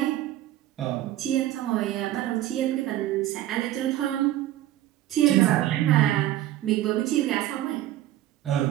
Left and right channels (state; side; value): quieter; left; 13.9 dB